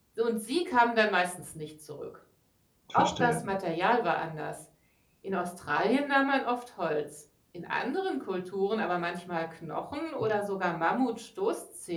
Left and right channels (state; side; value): identical; both; correlation 1.00